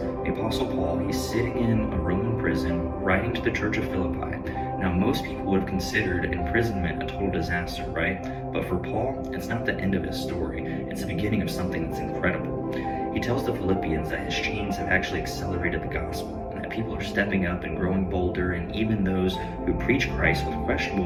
The Apostle Paul, he's sitting in a Roman prison writing to the church of Philippi. Now, most people would have considered imprisonment a total disaster, right? But for Paul, it's not the end of his story. It's the beginning of something that's incredible. He tells the Philippians that his chains have actually accelerated the gospel, and that people are stepping up and growing bolder, and even those who preach Christ with questionable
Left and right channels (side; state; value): both; identical; correlation 1.00